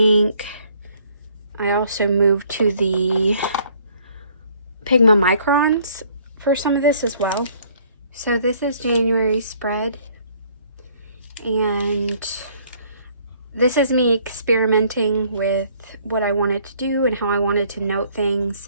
I also moved to the Pigma Microns for some of this as well. So this is January's spread, and this is me experimenting with what I wanted to do and how I wanted to note things.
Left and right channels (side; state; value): both; inverted; correlation -0.61